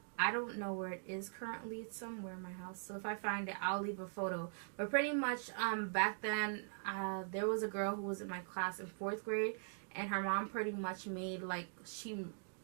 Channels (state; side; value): silent; left; digital silence